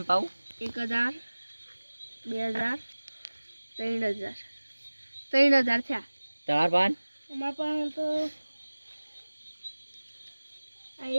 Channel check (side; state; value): both; inverted; correlation -1.00